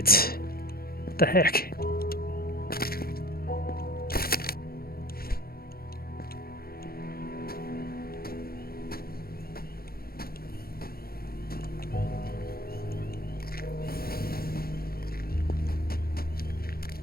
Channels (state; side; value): late; right; 0.44 ms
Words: What the heck?